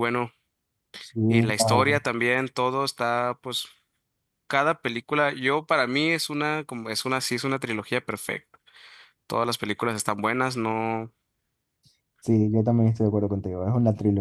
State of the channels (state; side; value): identical; both; correlation 1.00